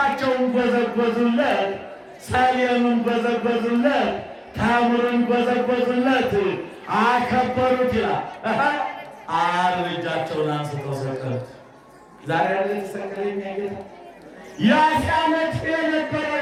ጎዘጎዙለት፣ ሰሌኑን ጎዘጎዙለት፣ ተምሩን ጎዘጎዙለት፣ አከበሩት ይላል። ዓርብ እጃቸውን አንስተው ሰቀሉት። ዛሬ ያለ ተሰቀለኛ ጌታ ያ ሲያመት የነበረው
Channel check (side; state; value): both; identical; correlation 1.00